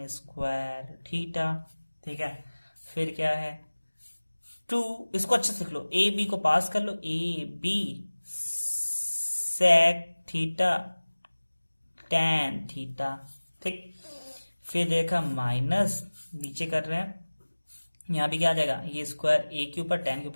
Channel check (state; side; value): inverted; both; correlation -1.00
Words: square theta, ठीक है। फिर क्या है 2, इसको अच्छे से लिख लो, ए बी को पास कर लो, A B sec theta tan theta, ठीक। फिर देखा माइनस, नीचे कर रहे हैं, यहां भी क्या आ जाएगा, ये स्क्वायर ए के ऊपर टेन के